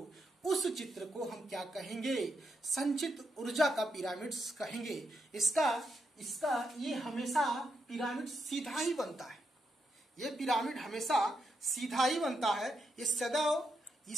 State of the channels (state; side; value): normal; both; correlation 0.82